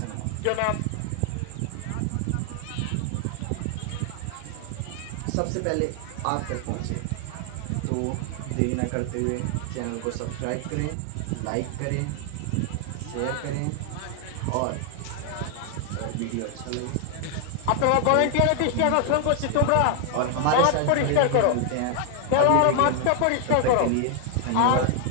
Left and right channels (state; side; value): different; both; correlation 0.00